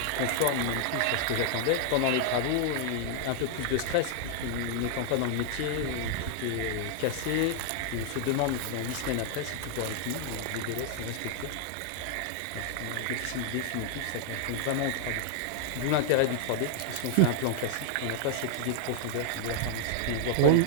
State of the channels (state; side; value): different; both; correlation 0.00